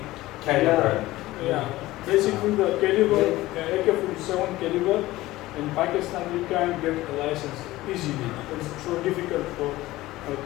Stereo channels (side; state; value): right; quieter; 17.5 dB